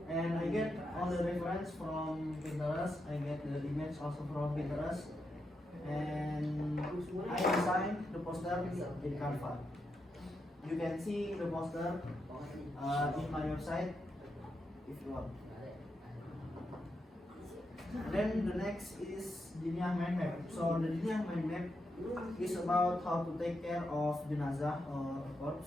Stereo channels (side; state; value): both; normal; correlation 0.84